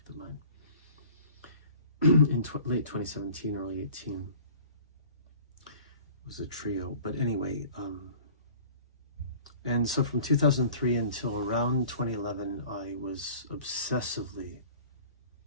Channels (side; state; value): both; inverted; correlation -0.47